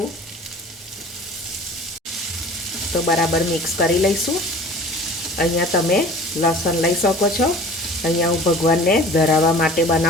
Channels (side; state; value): both; normal; correlation 0.44